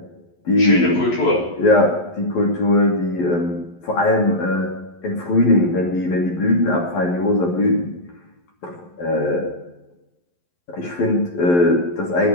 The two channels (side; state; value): right; late; 11 ms